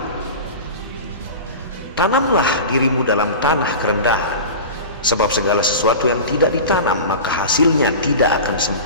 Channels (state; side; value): inverted; both; correlation -0.31